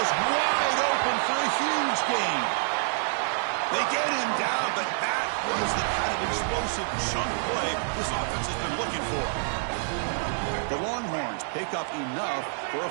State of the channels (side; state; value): left; silent; digital silence